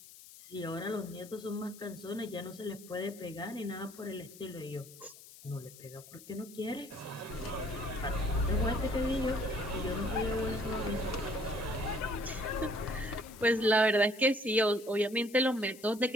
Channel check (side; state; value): left; noise; hiss, 18 dB below the sound